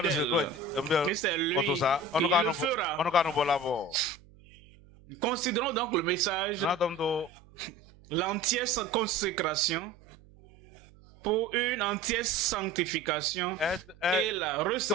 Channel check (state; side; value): noise; right; hum, 25 dB below the sound